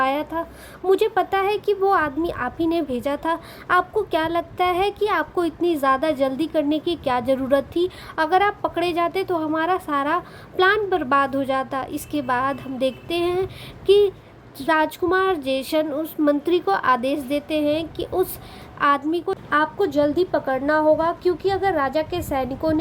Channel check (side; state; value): both; identical; correlation 1.00